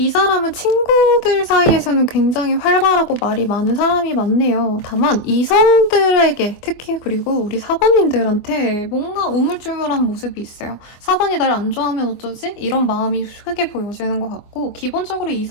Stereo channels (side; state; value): right; late; 24 ms